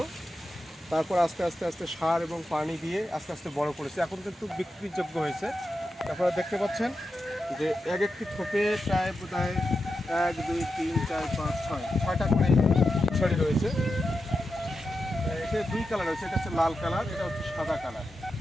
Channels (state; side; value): normal; both; correlation 0.89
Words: তারপর আস্তে আস্তে আস্তে সার এবং পানি দিয়ে আস্তে আস্তে বড় করেছে। এখন কিন্তু বিক্রিযোগ্য হয়েছে। তারপরে দেখতে পাচ্ছেন যে এক একটি থোপে প্রায় বোধহয় 1 2 3 4 5 6টা করে ছড়ি রয়েছে। এটা 2 কালার রয়েছে, এটা হচ্ছে লাল কালার, এটা হচ্ছে সাদা কালার।